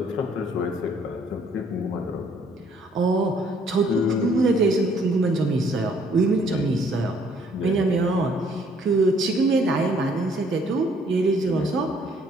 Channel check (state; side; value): normal; both; correlation 0.63